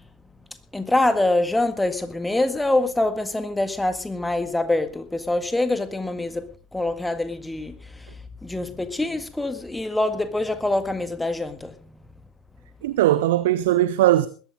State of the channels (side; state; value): both; normal; correlation 0.54